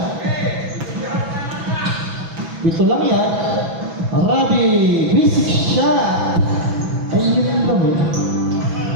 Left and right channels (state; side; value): late; left; 6.0 ms